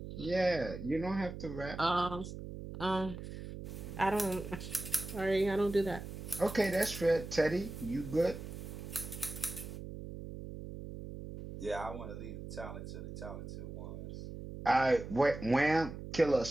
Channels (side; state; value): right; noise; hum, 9 dB below the sound